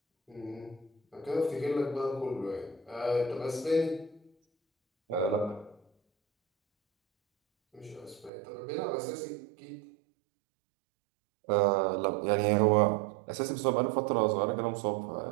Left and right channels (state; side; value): drops out; left; at 8.3 s